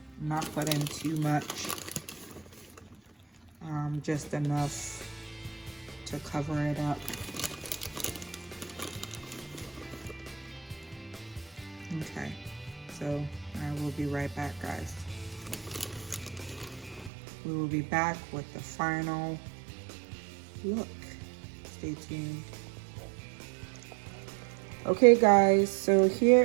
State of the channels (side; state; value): left; drops out; at 17.1 s